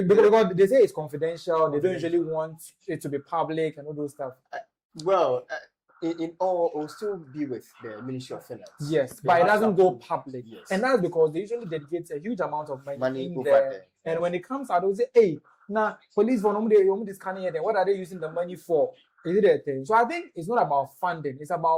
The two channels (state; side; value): identical; both; correlation 1.00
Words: they say it's confidential. They don't usually want it to be public and all those stuff. In all, it will still be with the Ministry of Finance. Yes, but it doesn't go public. Yes. And that's because they usually dedicate a huge amount of money in over there. And when it comes out, they'll say, hey, now police for this kind of thing. What are they using the money for? Is it a thing? So I think it's not about funding. It's